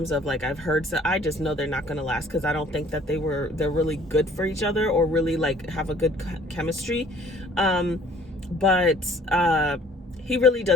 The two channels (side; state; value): both; normal; correlation 0.56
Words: of like, I've heard, so I just know they're not going to last, because I don't think that they're really good for each other or really like have a good chemistry. But he really